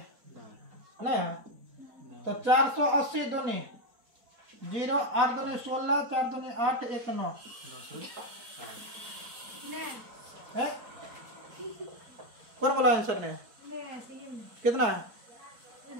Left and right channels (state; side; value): late; left; 4.7 ms